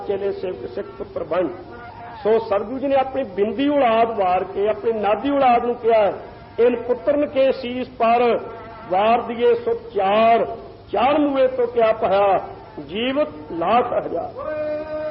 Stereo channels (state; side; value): identical; both; correlation 1.00